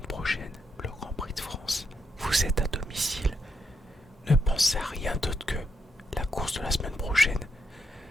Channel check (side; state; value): both; normal; correlation 0.81